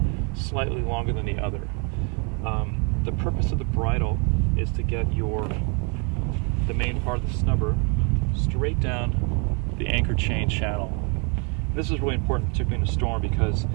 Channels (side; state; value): left; quieter; 34.8 dB